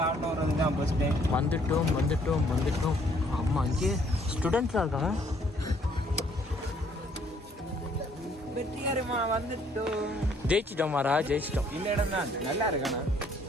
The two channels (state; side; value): normal; both; correlation 0.64